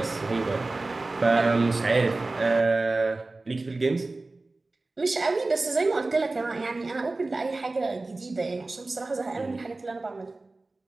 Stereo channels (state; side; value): quieter; left; 3.2 dB